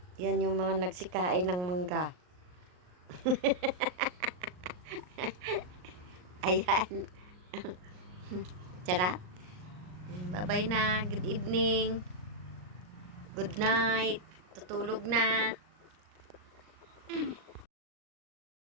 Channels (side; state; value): left; late; 39 ms